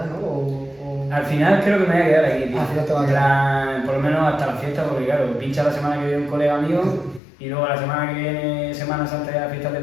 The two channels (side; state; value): right; drops out; at 7.2 s